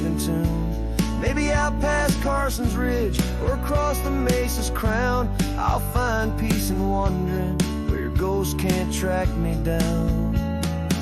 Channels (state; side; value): identical; both; correlation 1.00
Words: tune. Maybe out past Carson's Ridge or across the mesa's crown, I'll find peace in wandering where your ghost can't track me down.